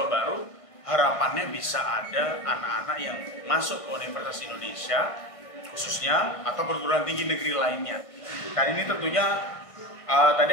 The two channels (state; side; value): late; right; 1.5 ms